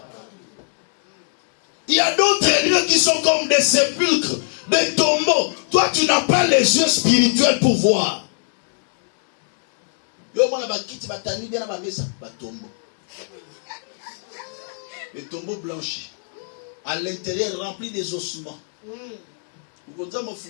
Il y a d'autres lieux qui sont comme des sépulcres, des tombeaux. Toi, tu n'as pas les yeux spirituels pour voir. Les tombeaux blanchis, à l'intérieur remplis des ossements.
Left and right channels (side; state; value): right; silent; digital silence